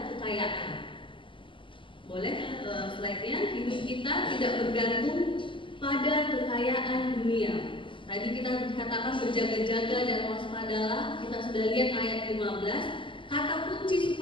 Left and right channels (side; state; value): right; late; 0.25 ms